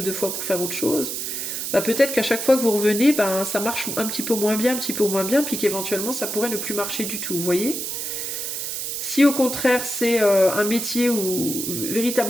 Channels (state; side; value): noise; right; hiss, 4 dB below the sound